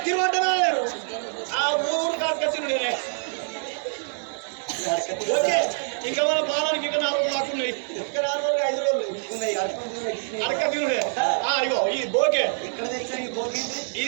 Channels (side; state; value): left; silent; digital silence